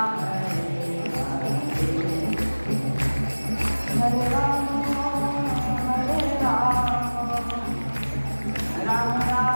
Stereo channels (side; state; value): both; inverted; correlation -1.00